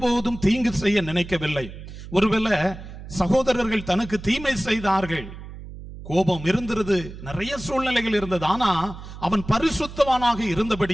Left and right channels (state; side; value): noise; right; hum, 13 dB below the sound